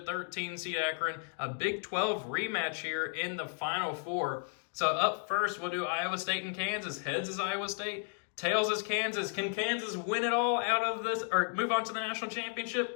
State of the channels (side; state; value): right; silent; 55 dB below the other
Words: 13 seed Akron, a Big 12 rematch here in the Final Four. So up first, we'll do Iowa State and Kansas. Heads is Iowa State, tails is Kansas. Can Kansas win it all out of this or move on to the national